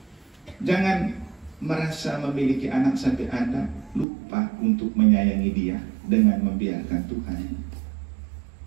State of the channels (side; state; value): left; drops out; at 4.0 s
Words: Jangan merasa memiliki anak sampai Anda lupa untuk menyayangi dia dengan membiarkan Tuhan